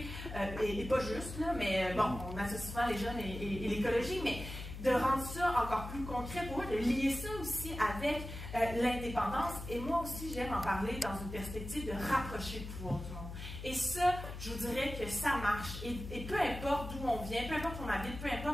et pas juste, là, mais bon, on associe souvent les jeunes et l'écologie, mais de rendre ça encore plus concret pour eux, de lier ça aussi avec l'indépendance. Et moi aussi, j'aime en parler dans une perspective de rapprocher le pouvoir du monde. Et ça, je vous dirais que ça marche. Et peu importe d'où on vient, peu importe où on habite, peu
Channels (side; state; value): left; noise; hum, 9 dB below the sound